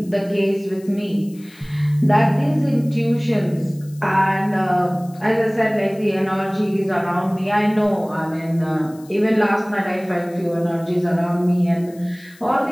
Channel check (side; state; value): left; noise; hiss, 25 dB below the sound